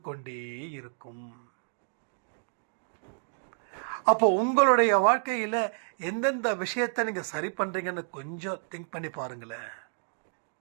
கொண்டே இருக்கும். அப்போ உங்களுடைய வாழ்க்கையில் எந்தெந்த விஷயத்தை நீங்கள் சரி பண்ணுறீங்கன்னு கொஞ்சம் திங்க் பண்ணி பாருங்களேன்.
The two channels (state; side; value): silent; left; digital silence